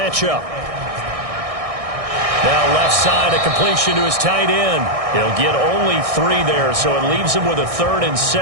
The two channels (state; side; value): late; left; 1.6 ms